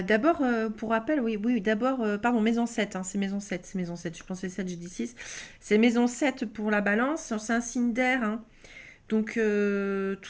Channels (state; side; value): identical; both; correlation 1.00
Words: pour rappel, oui, oui, d'abord, pardon, maison 7, hein, c'est maison 7, je pensais 7, j'ai dit 6. C'est maison 7 pour la balance, c'est un signe d'air, hein. Donc,